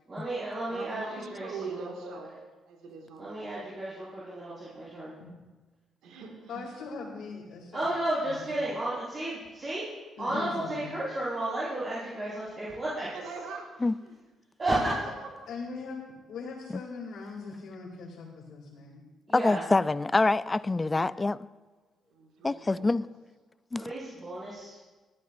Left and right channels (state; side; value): normal; both; correlation 0.90